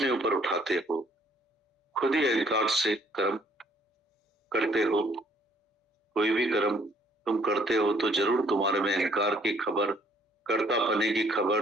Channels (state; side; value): normal; both; correlation 0.63